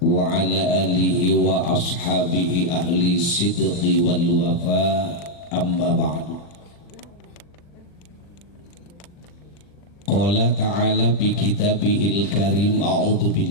wa ala alihi wa ashabihi ahli sidqi wal wafa. Amma ba'du. Qala ta'ala bi kitabihil karim, a'udzu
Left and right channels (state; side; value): late; right; 40 ms